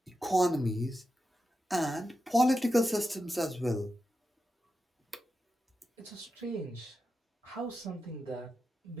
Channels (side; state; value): both; normal; correlation 0.89